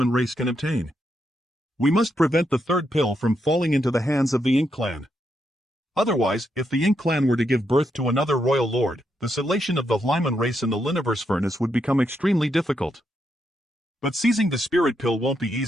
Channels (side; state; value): both; normal; correlation 0.81